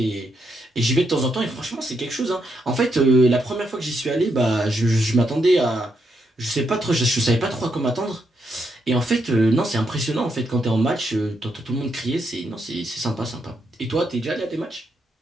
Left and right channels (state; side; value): normal; both; correlation 0.79